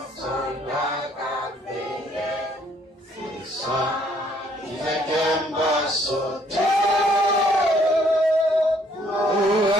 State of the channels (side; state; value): both; normal; correlation 0.65